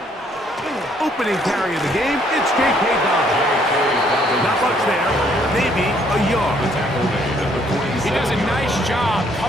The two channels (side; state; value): both; normal; correlation 0.66